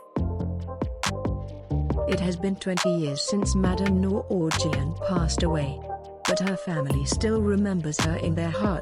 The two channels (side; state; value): both; identical; correlation 1.00